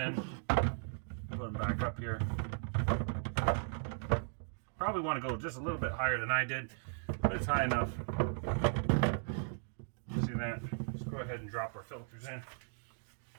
put them back up here. Probably want to go just a little bit higher than I did, but it's high enough. See that? Let's go ahead and drop our filters in.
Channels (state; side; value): silent; left; digital silence